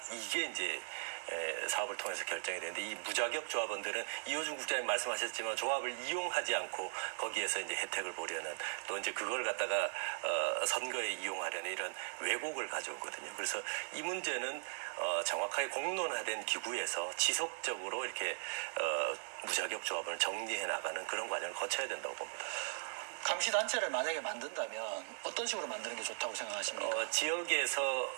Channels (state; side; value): silent; left; digital silence